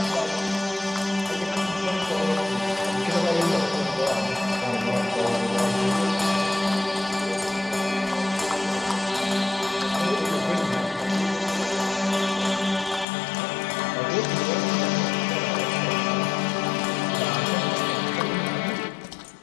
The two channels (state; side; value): drops out; right; at 13.1 s